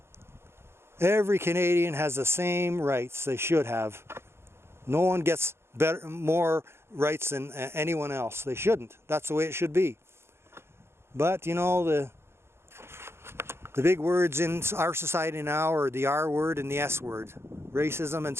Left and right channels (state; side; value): late; left; 0.12 ms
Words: Every Canadian has the same rights they should have. No one gets more rights than anyone else. They shouldn't. That's the way it should be. But, you know, the big words in our society now are the R word and the S word. Racism and